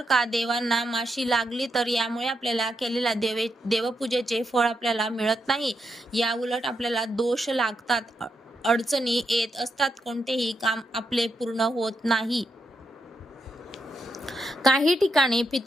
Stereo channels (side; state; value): both; normal; correlation 0.83